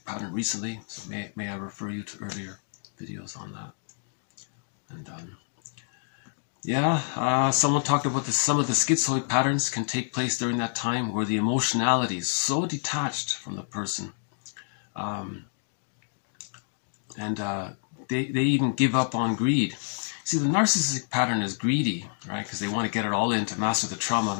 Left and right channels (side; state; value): right; silent; digital silence